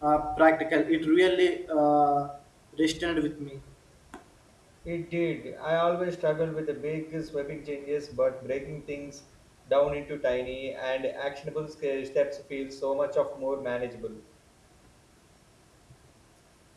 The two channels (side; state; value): both; identical; correlation 1.00